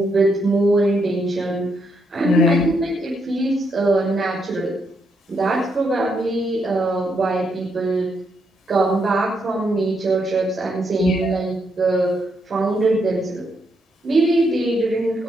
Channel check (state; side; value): normal; both; correlation 0.78